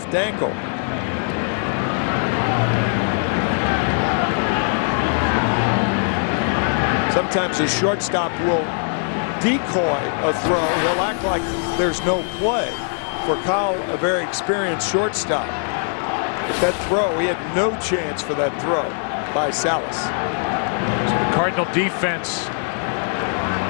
ankle. Sometimes a shortstop will decoy a throw. He'll act like there's no play. for Kyle, a very experienced shortstop. But that throw, he had no chance for that throw by Salas. So the Cardinal defense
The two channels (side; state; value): right; silent; 59 dB below the other